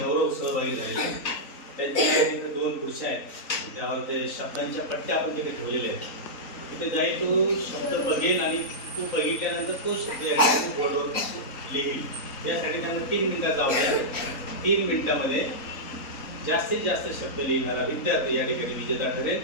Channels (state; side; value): late; right; 3.9 ms